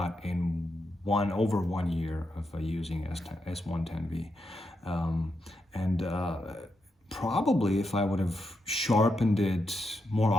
in over 1 year of using S110V. Probably if I would have sharpened it more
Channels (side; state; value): both; normal; correlation 0.84